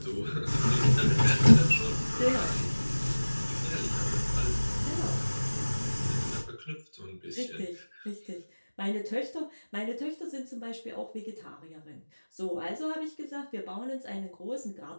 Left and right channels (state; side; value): inverted; both; correlation -1.00